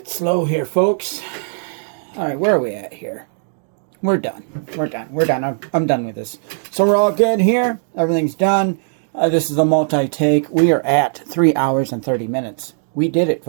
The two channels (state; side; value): silent; left; digital silence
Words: slow here, folks. All right, where are we at here? We're done. We're done. We're done. I'm done with this. So we're all good here. Everything's done. This is a multi-take. We are at 3 hours and 30 minutes. We did it,